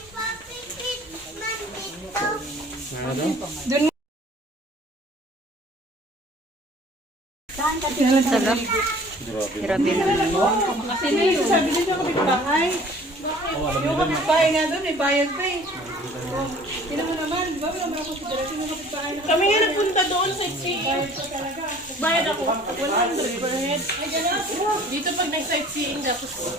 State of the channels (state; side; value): normal; both; correlation 0.50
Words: Ano? Doon mo. Grabe naman. Kasi yung sabi nito kapitbahay. Yung kapitbahay nga doon, may bayad pa eh. Tignan mo naman, di ba? Wala mga konsiderasyon yung kapitbahay. Kami nga nagpunta doon sa sightseeing. Bayad ako. 100 per head. Dito pag nag-sightseeing, tapos